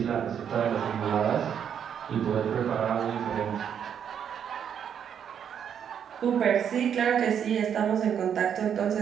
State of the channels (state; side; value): quieter; left; 8.3 dB